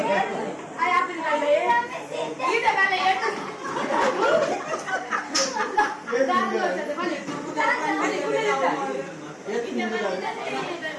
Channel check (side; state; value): both; identical; correlation 1.00